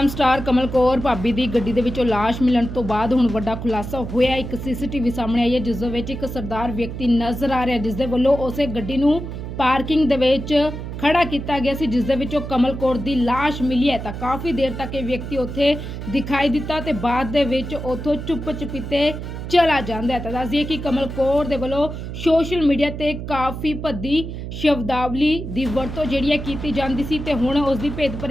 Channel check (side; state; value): right; noise; hum, 7 dB below the sound